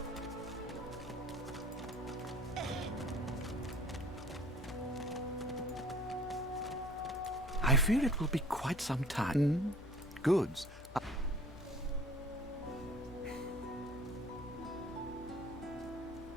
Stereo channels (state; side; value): normal; both; correlation 0.50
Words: I fear it will be quite some time. Goods.